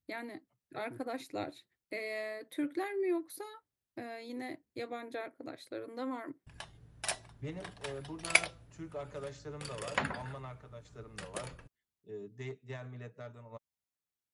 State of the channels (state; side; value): identical; both; correlation 1.00